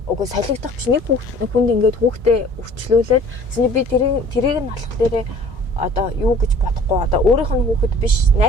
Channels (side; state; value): both; normal; correlation 0.49